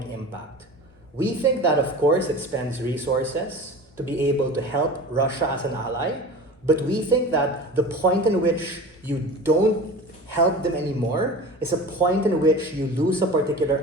impact. We think that, of course, it spends resources to be able to help Russia as an ally, but we think that the point in which you don't help them anymore is a point in which you lose a particular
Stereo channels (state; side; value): normal; both; correlation 0.35